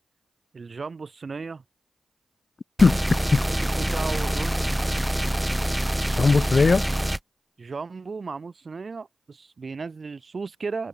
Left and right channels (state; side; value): normal; both; correlation 0.96